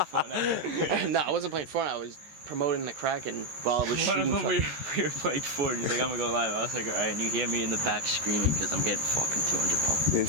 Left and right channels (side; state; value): left; late; 13 ms